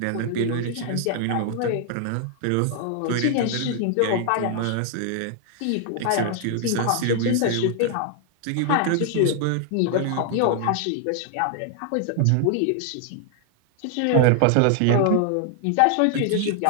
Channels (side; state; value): both; different; correlation 0.00